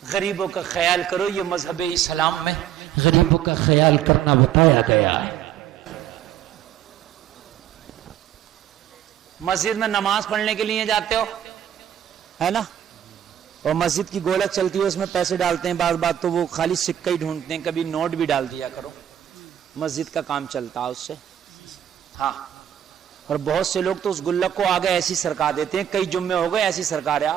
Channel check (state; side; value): quieter; left; 10.5 dB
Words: غریبوں کا خیال کرو، یہ مذہب اسلام میں غریبوں کا خیال کرنا بتایا گیا۔ مسجد میں نماز پڑھنے کے لیے جاتے ہو، ہے نا، اور مسجد کی گولک چلتی ہے، اس میں پیسے ڈالتے ہیں، بعض بات تو وہ خالی سکہ ہی ڈھونڈتے ہیں، کبھی نوٹ بھی ڈال دیا کرو، مسجد کا کام چلتا ہے اس سے۔ ہاں، اور بہت سے لوگ تو اس گلک کو آگے ایسی سرکا دیتے ہیں، کئی جمعے ہو گئے ایسی سرکا